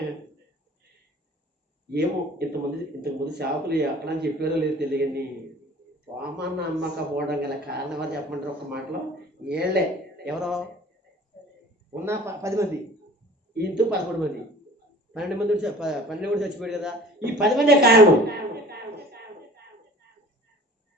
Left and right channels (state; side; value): normal; both; correlation 0.46